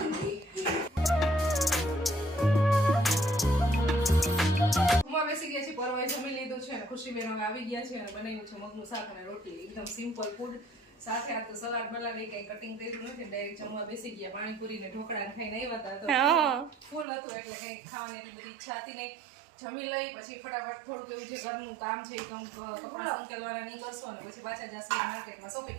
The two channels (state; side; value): drops out; left; at 17.1 s